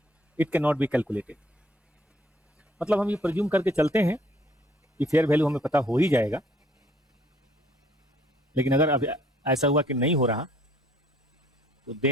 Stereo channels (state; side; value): normal; both; correlation 0.61